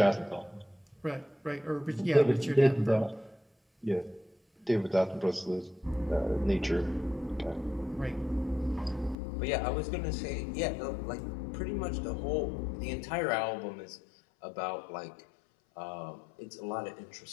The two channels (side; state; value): right; drops out; at 9.2 s